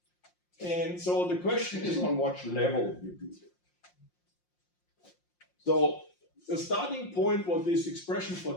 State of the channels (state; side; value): late; right; 5.6 ms